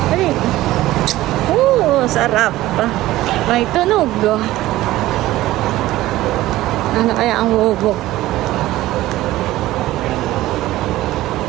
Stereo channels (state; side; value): quieter; left; 16.2 dB